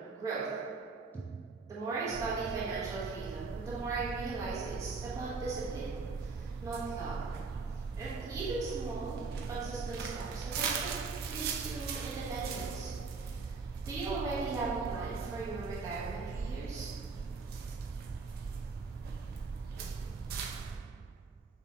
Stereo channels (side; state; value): left; quieter; 4.3 dB